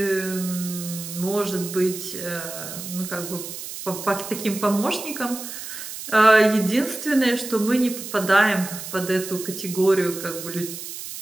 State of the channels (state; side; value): noise; right; hiss, 9 dB below the sound